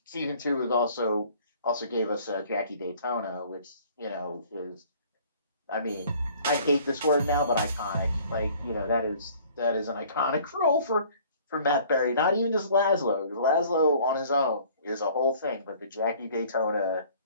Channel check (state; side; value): inverted; both; correlation -0.53